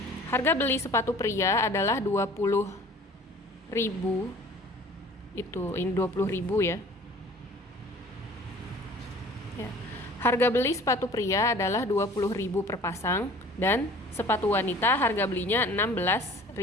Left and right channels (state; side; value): normal; both; correlation 0.48